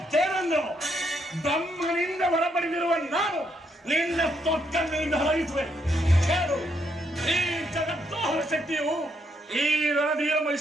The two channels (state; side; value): normal; both; correlation 0.75